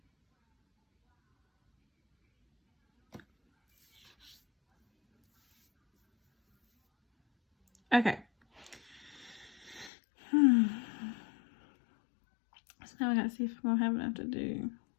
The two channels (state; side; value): drops out; right; at 9.9 s